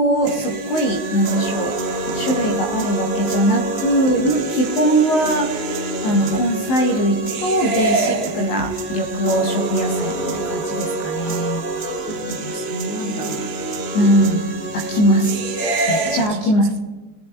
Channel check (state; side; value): late; right; 19 ms